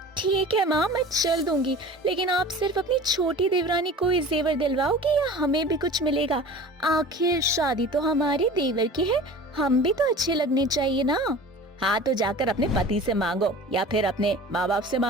ठीक है माँ, मैं चल दूंगी, लेकिन आप सिर्फ अपनी छोटी देवरानी को ही जेवर दिलवाओगे या हमें भी कुछ मिलेगा? आखिर शादी तो हमारे देवर की है, हम भी तो अच्छे लगने चाहिए ना। हाँ, तो जाकर अपने पति से मांगो या फिर अपने माँ बाप से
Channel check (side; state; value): both; normal; correlation 0.40